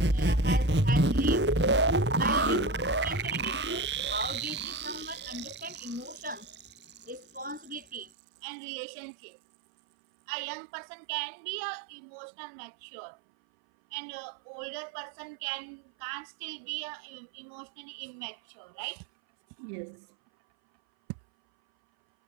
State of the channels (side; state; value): left; drops out; at 8.1 s